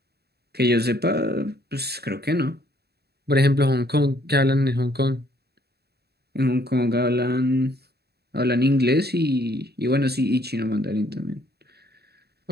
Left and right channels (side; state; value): left; late; 0.47 ms